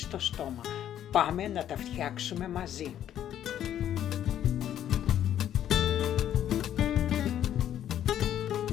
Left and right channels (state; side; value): quieter; right; 10.8 dB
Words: στόμα. Πάμε να τα φτιάξουμε μαζί.